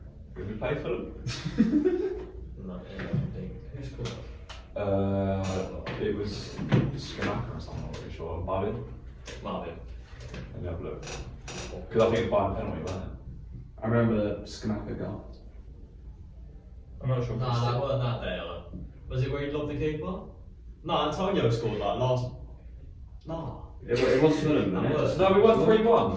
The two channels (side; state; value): both; identical; correlation 1.00